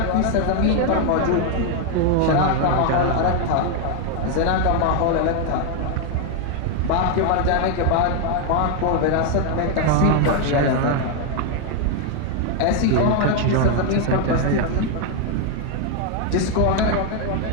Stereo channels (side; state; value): both; different; correlation 0.00